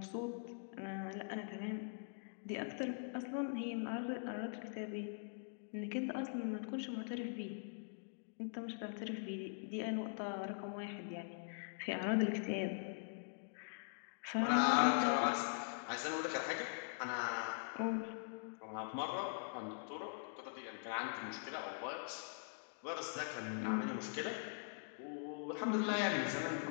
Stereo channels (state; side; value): silent; right; digital silence